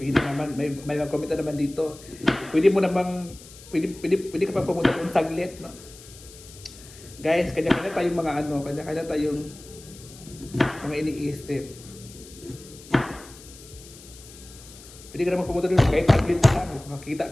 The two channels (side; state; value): left; noise; hiss, 19 dB below the sound